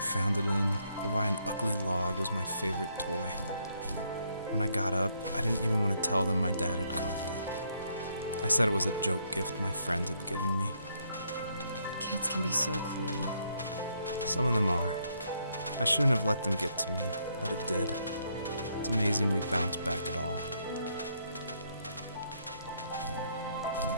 found it in, or why an ugly log was my favorite toy. When I got up, I didn't even want to tell them my dad had carved it. I said it was a joke gift my friend had given me. Kids can be so cruel. Some of them are. I shouldn't have let them get to me, but it did. It's amazing we bounced back at all.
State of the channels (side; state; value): both; inverted; correlation -0.73